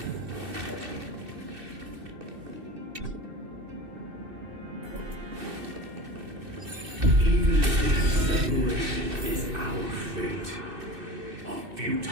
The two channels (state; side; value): late; left; 2.6 ms